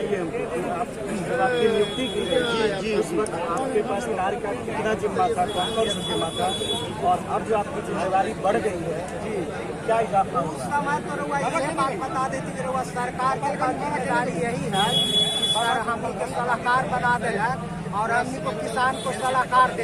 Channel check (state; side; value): identical; both; correlation 1.00